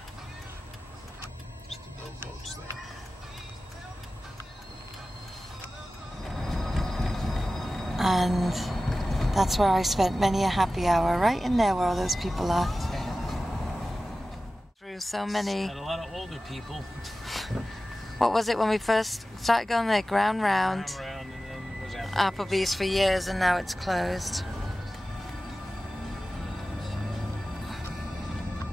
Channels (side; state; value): both; normal; correlation 0.95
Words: Just the little boats there. And that's where I spent many a happy hour, right in there where all those people are. Through so many. Had a lot of older people. What was it when we first started going there? Ground Round. Around and then it was Applebee's for years and now it's closed.